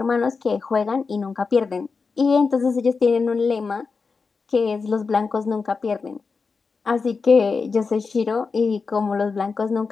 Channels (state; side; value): quieter; right; 4.8 dB